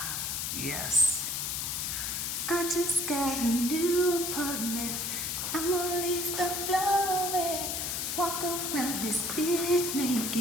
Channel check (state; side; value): noise; left; hiss, 1 dB below the sound